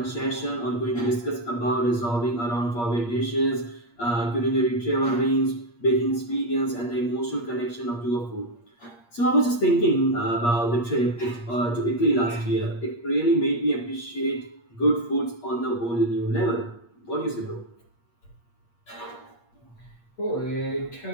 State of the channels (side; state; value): right; late; 8.5 ms